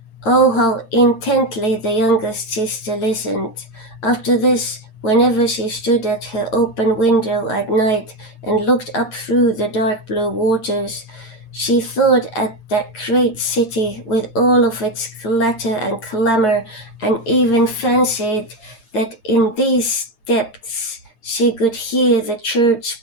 Oh, how intently the youngest sister listened. After this, whenever she stood at her open window at night and looked up through the dark blue waters, she thought at that great city with all of its clatter and clamor, and even fancied that in these depths she could hear the church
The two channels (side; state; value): right; late; 8.7 ms